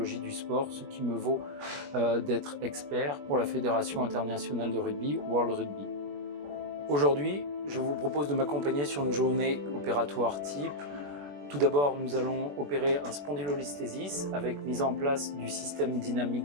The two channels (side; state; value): left; late; 21 ms